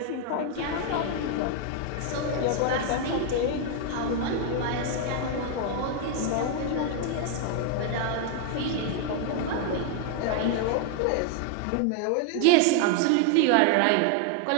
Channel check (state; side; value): different; both; correlation 0.00